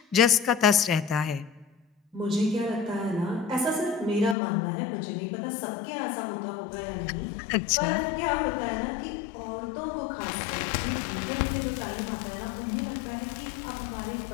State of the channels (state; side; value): drops out; right; at 4.4 s